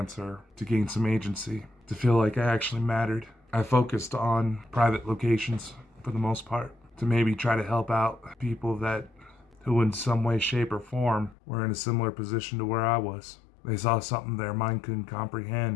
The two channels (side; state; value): right; drops out; at 11.4 s